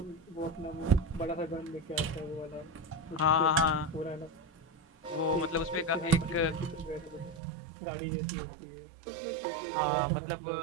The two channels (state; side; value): drops out; left; at 7.4 s